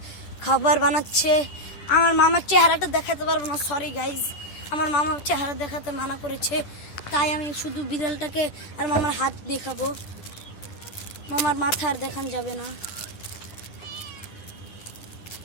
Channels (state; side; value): late; right; 10 ms